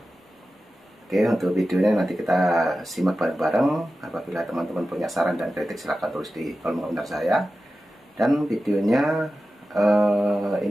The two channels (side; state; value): both; normal; correlation 0.93